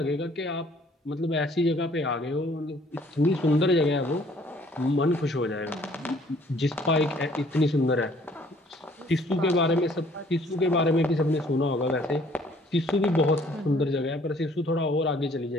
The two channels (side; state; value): both; normal; correlation 0.59